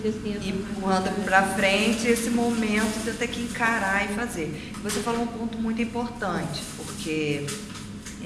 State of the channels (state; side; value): identical; both; correlation 1.00